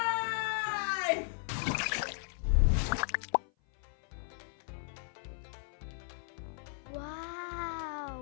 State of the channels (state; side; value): silent; right; 54 dB below the other